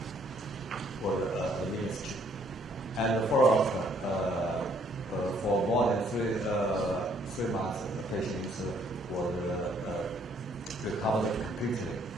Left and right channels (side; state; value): both; normal; correlation 0.65